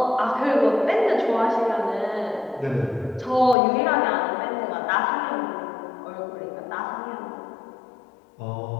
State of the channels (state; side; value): drops out; right; at 3.6 s